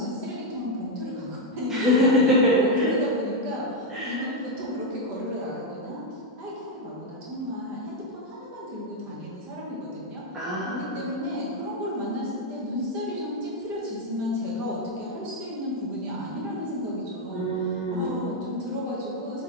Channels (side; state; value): both; normal; correlation 0.02